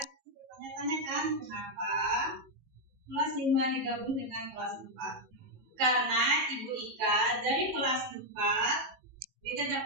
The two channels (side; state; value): left; late; 18 ms